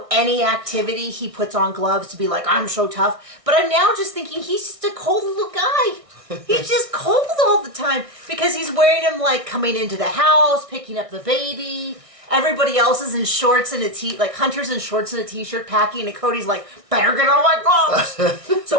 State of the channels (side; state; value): left; late; 1.6 ms